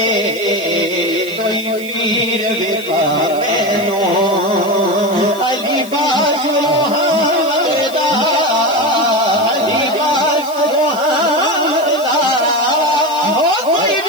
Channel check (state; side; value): noise; left; hiss, 17 dB below the sound